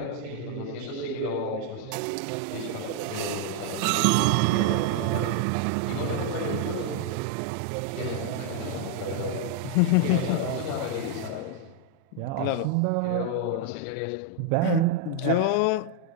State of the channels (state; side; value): different; both; correlation 0.00